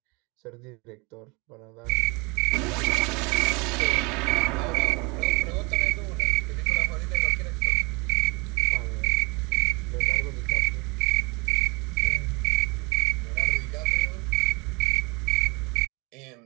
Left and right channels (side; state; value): left; quieter; 28.0 dB